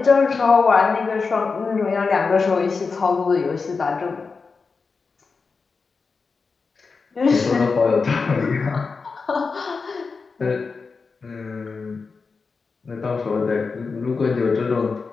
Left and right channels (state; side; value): quieter; right; 4.7 dB